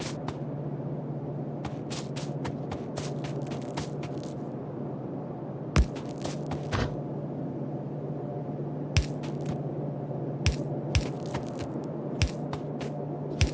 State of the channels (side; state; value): both; identical; correlation 1.00